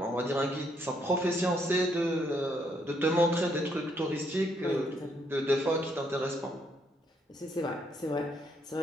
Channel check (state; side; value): normal; both; correlation 0.72